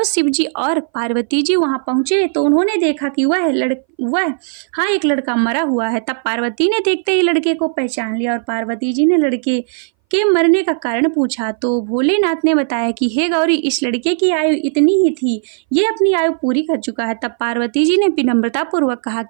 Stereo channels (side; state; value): left; silent; 62 dB below the other